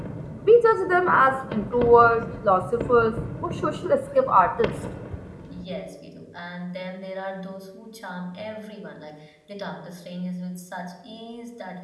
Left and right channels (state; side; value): identical; both; correlation 1.00